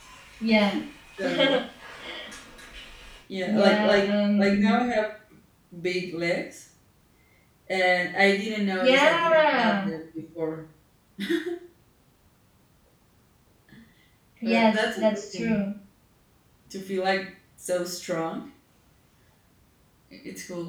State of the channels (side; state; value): both; identical; correlation 1.00